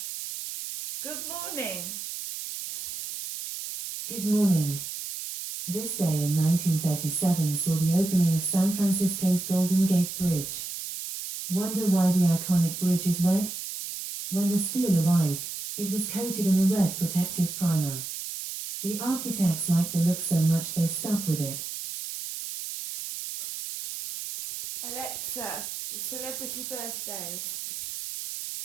good morning. Good morning. This day in 1937 saw the opening of San Francisco's Golden Gate Bridge. Wonder why the iconic bridge is red? When the steel arrived, it was coated in a red protective primer. The architects liked the look so much they stuck with it. Alexa, celebrity birthdays.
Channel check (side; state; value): right; noise; hiss, 7 dB below the sound